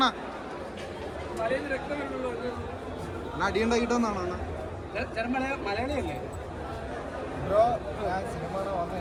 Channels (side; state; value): both; identical; correlation 1.00